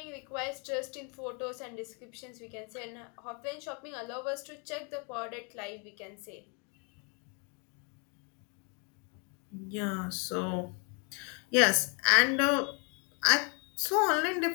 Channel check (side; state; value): right; quieter; 35.9 dB